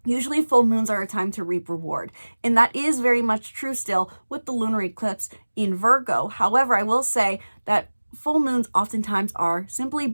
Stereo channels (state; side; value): inverted; both; correlation -1.00